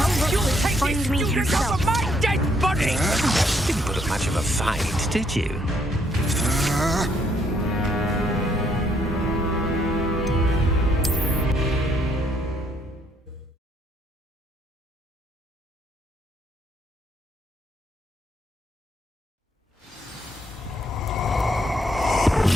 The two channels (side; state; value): both; normal; correlation 0.70